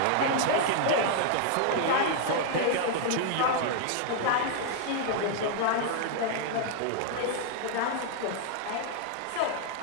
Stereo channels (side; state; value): both; different; correlation -0.01